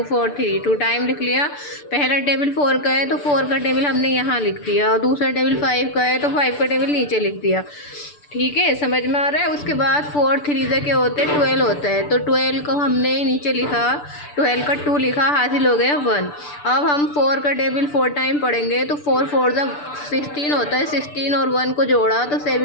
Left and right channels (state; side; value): late; right; 6.8 ms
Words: 4 3, 2 टाइम लिख लिया। पहला टेबल 4 का है तो 4 का टेबल हमने यहाँ लिख दिया, और दूसरा टेबल 5 का है तो 5 का टेबल नीचे लिख दिया। ठीक है, समझ में आ रहा है। उसके बाद 4 3 से क्या होते हैं, 12 होता है। तो 12 को हमने नीचे लिखा, 12 का 2 लिखा, हासिल हो गया 1। अब हम 4 का टेबल 4 टाइम पढ़ेंगे तो 4 4 जा 16 होता है। 16 और 1 को जोड़ा तो